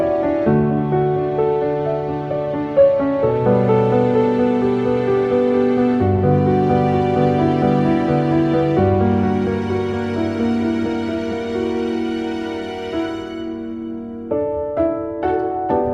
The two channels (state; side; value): identical; both; correlation 1.00